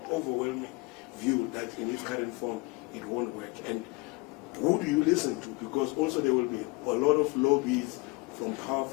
overwhelming view that in its current form it won't work? And who do you listen to? Because also there will be a lot of lobbies from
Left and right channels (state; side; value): quieter; right; 25.8 dB